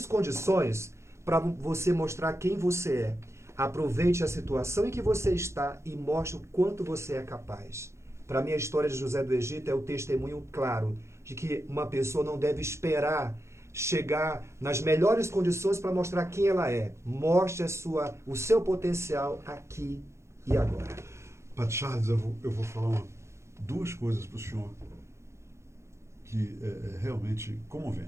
condições para você mostrar quem você é. Aproveite a situação em que você está e mostre o quanto você é capaz. Para mim, a história de José do Egito é o testemunho claro de que uma pessoa não deve esperar chegar nas melhores condições para mostrar quem ela é. Mostre o seu potencial aqui e agora. Padre Charles, eu vou falar duas coisas para o senhor que é realmente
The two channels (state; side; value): late; left; 0.13 ms